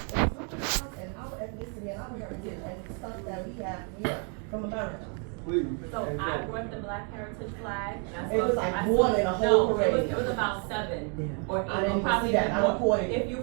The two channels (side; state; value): left; quieter; 38.3 dB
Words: include us and our ethnicity and our heritage and stuff that we have here from America. Please. So I brought the Black Heritage flag. And It was like one in a whole parade. It was about 7 or 8. I didn't Probably see that. I more. recorded If you